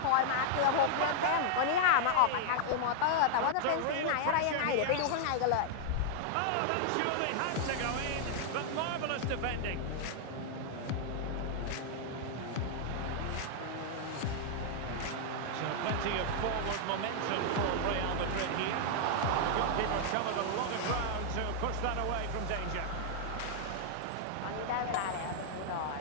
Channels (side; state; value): both; different; correlation -0.01